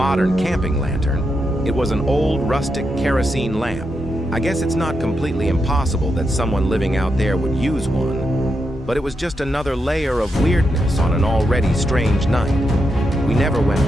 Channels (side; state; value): both; normal; correlation 0.84